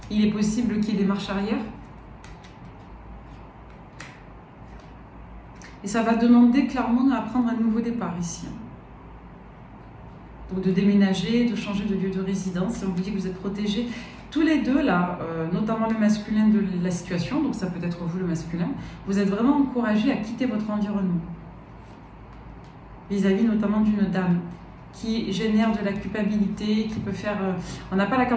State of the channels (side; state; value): both; identical; correlation 1.00